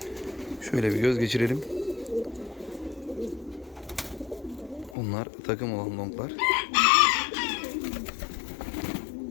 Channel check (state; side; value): drops out; right; at 5.0 s